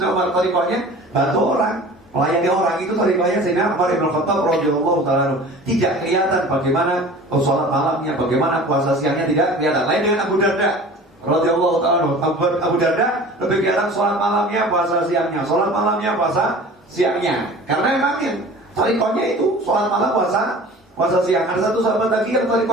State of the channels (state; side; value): normal; both; correlation 0.42